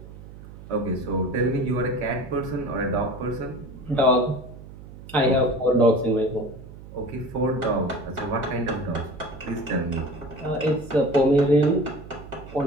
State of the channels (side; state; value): right; noise; hum, 16 dB below the sound